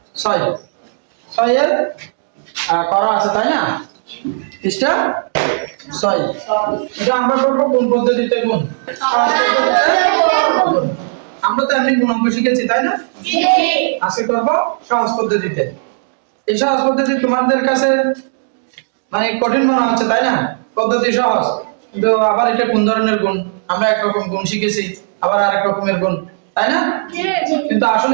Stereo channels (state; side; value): silent; left; digital silence